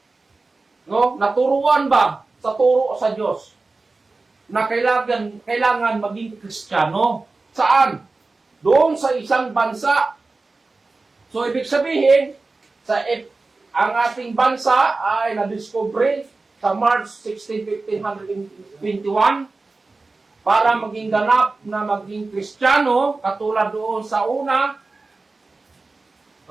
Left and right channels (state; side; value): quieter; left; 3.6 dB